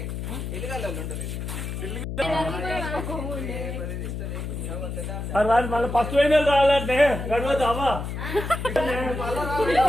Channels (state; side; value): noise; left; hum, 5 dB below the sound